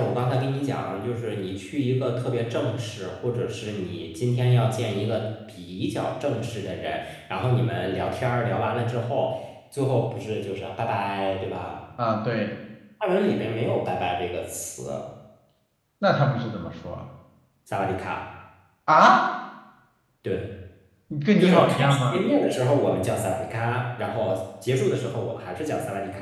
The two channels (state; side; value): identical; both; correlation 1.00